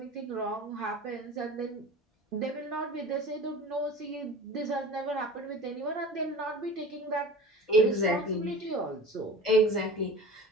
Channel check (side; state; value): both; normal; correlation 0.37